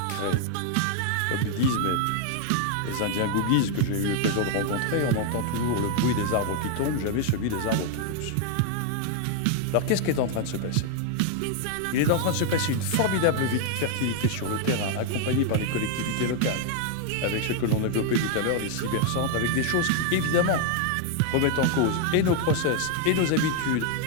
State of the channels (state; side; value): different; both; correlation 0.00